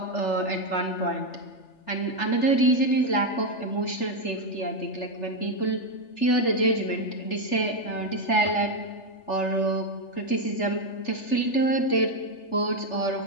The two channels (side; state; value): right; late; 3.3 ms